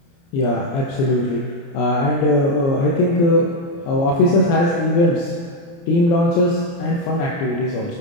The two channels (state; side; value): late; right; 29 ms